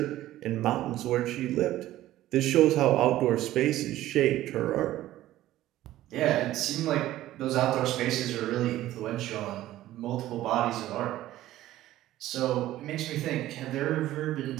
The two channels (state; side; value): quieter; left; 14.6 dB